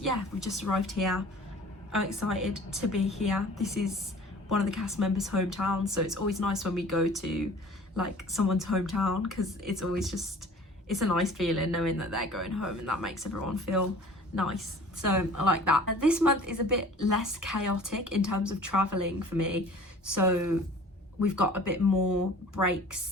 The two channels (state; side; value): normal; both; correlation 0.46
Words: we've just arrived here. I'm excited to be here. This is one of the cast members' hometowns, so it's always nice when we go to like someone's hometown, because it's always just, it's a nice feeling knowing that they're going home, and that makes everyone feel nice. So I like that. And this month is a bit less chaotic in terms of traveling for me, so we've got a bit more